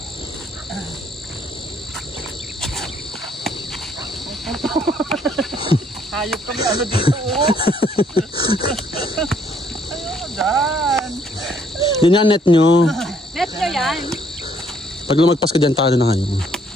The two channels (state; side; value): normal; both; correlation 0.66